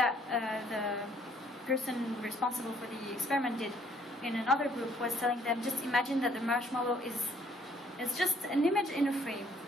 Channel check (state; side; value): normal; both; correlation 0.64